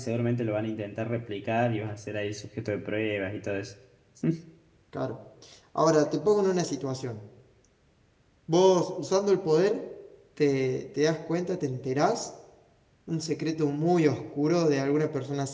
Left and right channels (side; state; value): both; identical; correlation 1.00